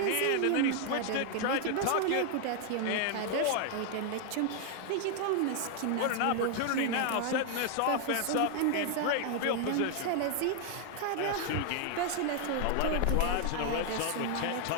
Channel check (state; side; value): different; both; correlation 0.00